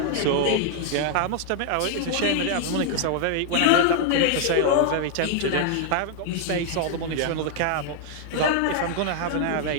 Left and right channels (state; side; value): different; both; correlation 0.00